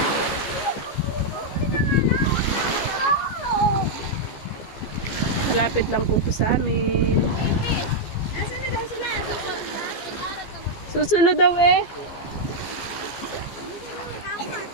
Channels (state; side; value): late; right; 15 ms